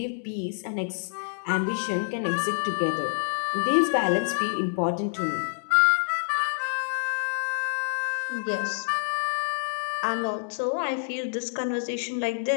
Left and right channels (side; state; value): right; silent; digital silence